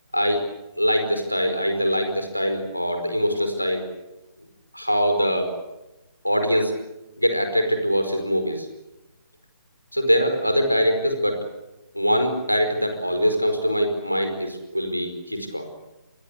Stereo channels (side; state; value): both; inverted; correlation -0.86